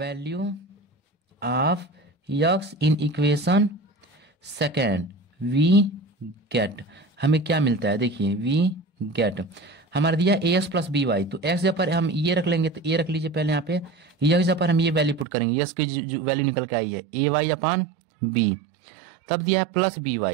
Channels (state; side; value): drops out; left; at 15.2 s